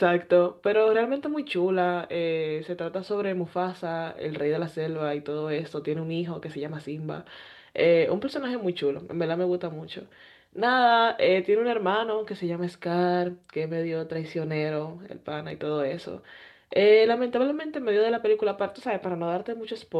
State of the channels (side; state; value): both; identical; correlation 1.00